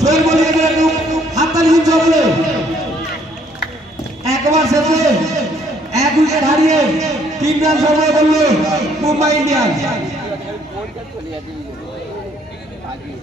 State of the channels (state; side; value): normal; both; correlation 0.65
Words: হাততালি দিচ্ছে বলে একবার শেষে 1 উইকেট হারিয়ে 3 রান সংগ্রহ করল মুম্বাই ইন্ডিয়ান্স